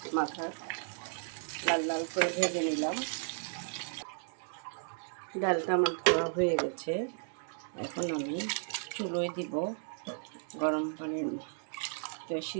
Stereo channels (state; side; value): silent; left; 55 dB below the other